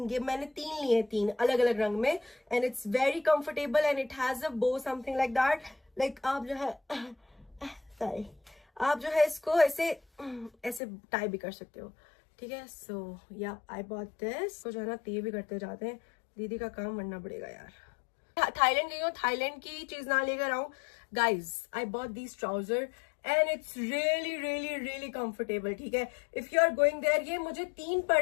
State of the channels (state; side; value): drops out; right; at 10.8 s